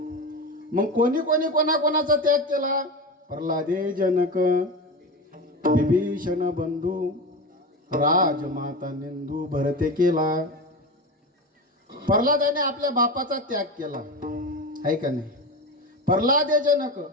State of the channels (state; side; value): normal; both; correlation 0.23